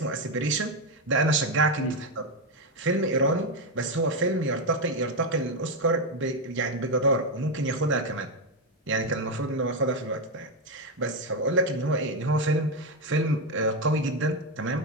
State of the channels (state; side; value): normal; both; correlation 0.07